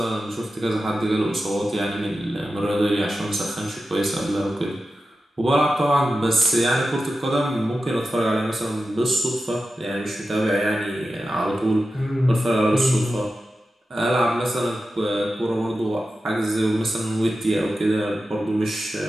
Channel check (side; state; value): both; normal; correlation 0.92